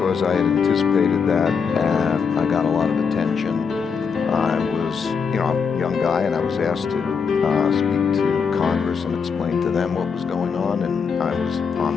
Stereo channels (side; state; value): right; quieter; 6.0 dB